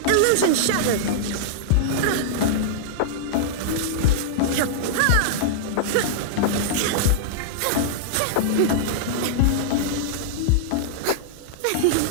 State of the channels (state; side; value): different; both; correlation -0.02